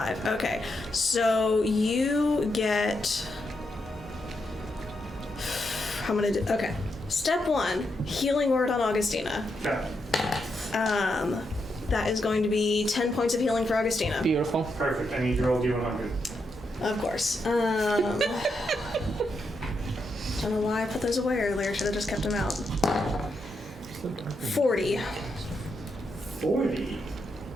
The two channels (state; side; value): normal; both; correlation 0.83